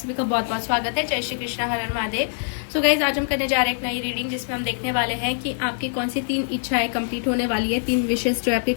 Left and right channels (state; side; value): silent; right; digital silence